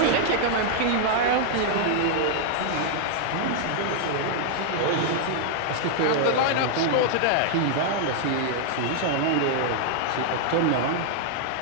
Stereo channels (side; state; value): both; different; correlation 0.00